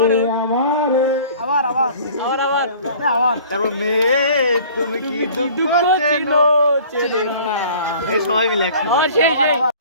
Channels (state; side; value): inverted; both; correlation -0.48